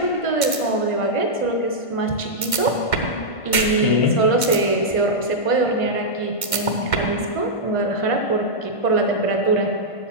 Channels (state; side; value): late; right; 1.5 ms